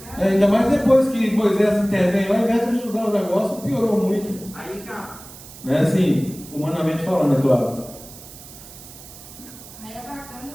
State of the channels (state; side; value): noise; right; hiss, 17 dB below the sound